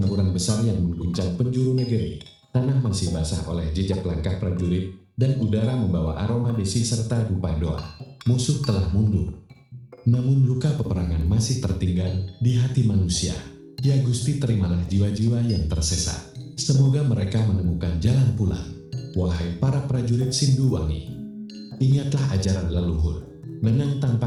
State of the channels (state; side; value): identical; both; correlation 1.00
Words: besar yang mengguncang penjuru negeri, tanah masih basah oleh jejak langkah prajurit, dan udara membawa aroma besi serta dupa doa. Musuh telah mundur. Namun luka peperangan masih tertinggal di hati manusia. Ya Gusti, terimalah jiwa-jiwa yang tersesat. Semoga mereka menemukan jalan pulang. Wahai para prajurit Sinduwangi, ingatlah ajaran leluhur. Menang